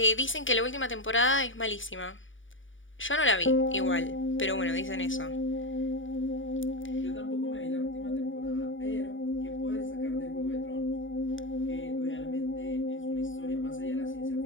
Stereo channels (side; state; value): right; late; 0.57 ms